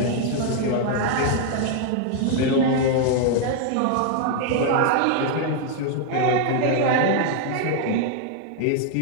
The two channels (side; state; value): both; different; correlation 0.00